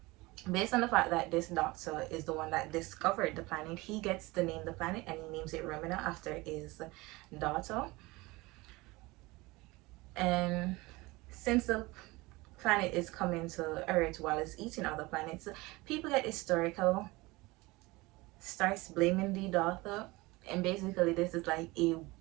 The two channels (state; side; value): quieter; left; 22.2 dB